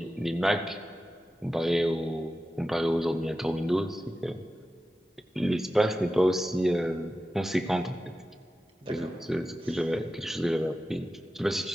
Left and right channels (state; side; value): normal; both; correlation 0.93